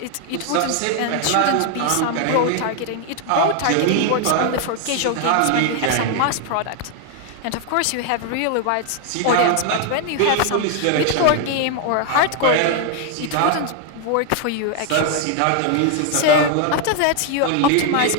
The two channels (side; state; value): both; different; correlation 0.00